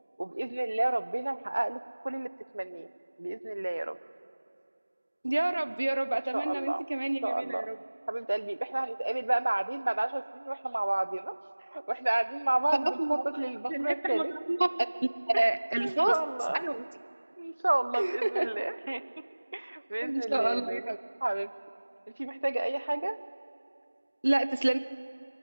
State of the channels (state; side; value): inverted; both; correlation -1.00